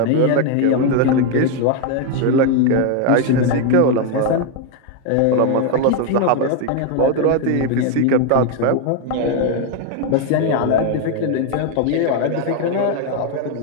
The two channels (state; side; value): different; both; correlation 0.01